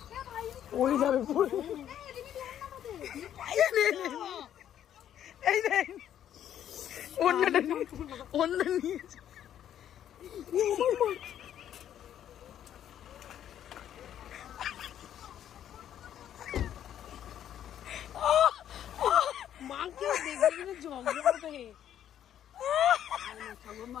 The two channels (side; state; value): right; quieter; 10.5 dB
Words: ওই যাবে পড়ে। এই দেখ অন্যটা নিয়েছে।